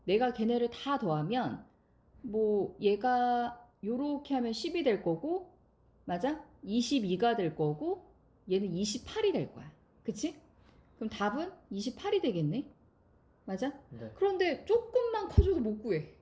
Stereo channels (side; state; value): both; identical; correlation 1.00